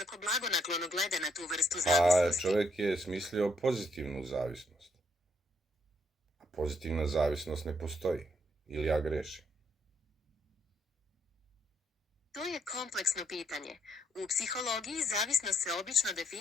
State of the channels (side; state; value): both; normal; correlation 0.73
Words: blagonaklono gleda na tu vrstu zavisnosti? Čovek je smislio pozitivnu zavisnost. A pozitivna zavisnost ne postoji. Ili ja grešim? To je kompleksno pitanje. U psihologiji zavisnost se obično